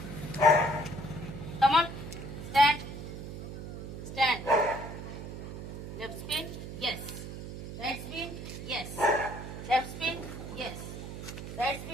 Come on. Stand. Stand. Left spin. Yes. Right spin. Yes. Left spin. Yes. Right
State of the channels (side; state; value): right; noise; hum, 9 dB below the sound